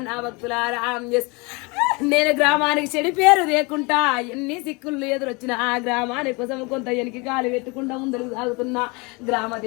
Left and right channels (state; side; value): quieter; right; 27.6 dB